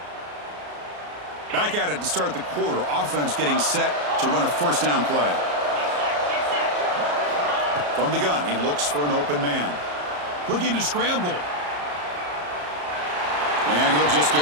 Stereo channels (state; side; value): late; left; 34 ms